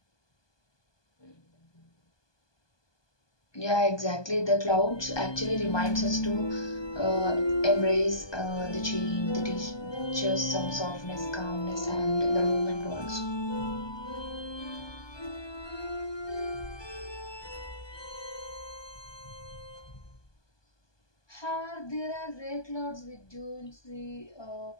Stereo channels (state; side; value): late; right; 1.2 ms